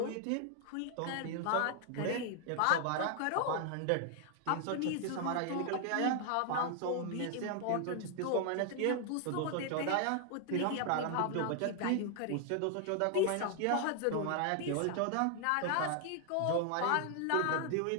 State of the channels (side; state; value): both; different; correlation 0.00